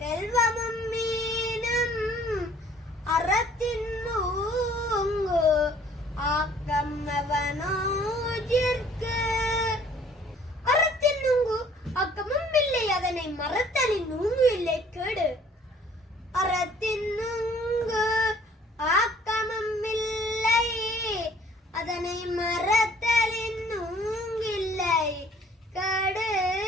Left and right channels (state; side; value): normal; both; correlation 0.56